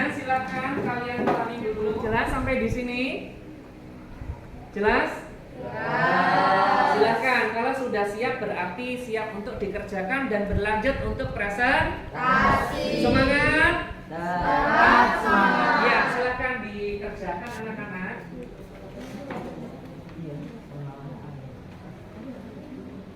silahkan kalian ulangi dulu. Jelas sampai di sini? Jelas? Silakan, kalau sudah siap berarti siap untuk dikerjakan dan berlanjut untuk presentasi. Semangat? Semangat. Ya, silakan dikerjakan anak-anak. Iya,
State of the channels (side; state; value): both; identical; correlation 1.00